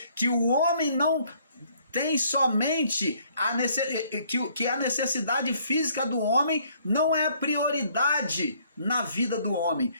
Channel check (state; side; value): inverted; both; correlation -0.64